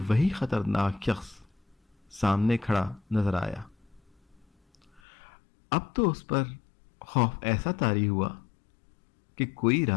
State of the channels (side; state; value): right; drops out; at 5.0 s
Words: خطرناک شخص سامنے کھڑا نظر آیا۔ اب تو اس پر خوف ایسا طاری ہوا کہ کوئی